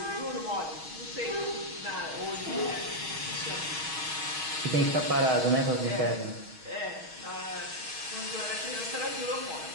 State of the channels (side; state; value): left; late; 6.3 ms